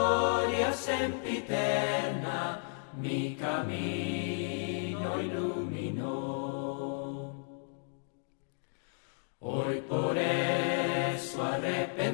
sempiterna mi camino iluminó. Hoy por eso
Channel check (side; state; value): right; silent; 56 dB below the other